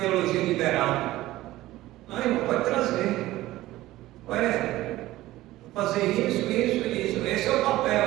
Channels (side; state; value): left; quieter; 16.5 dB